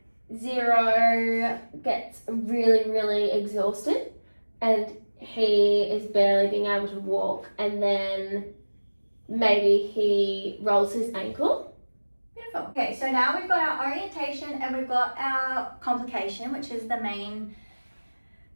Zero gets really, really exhausted and he is barely being able to walk, and then maybe he rolls his ankle. Beautiful. Okay, so now we've got our orientation and we've got our complication, which is the main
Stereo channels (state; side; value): inverted; both; correlation -1.00